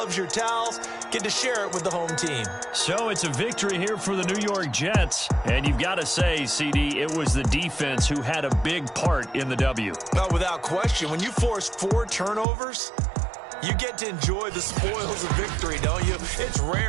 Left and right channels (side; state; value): left; drops out; at 12.5 s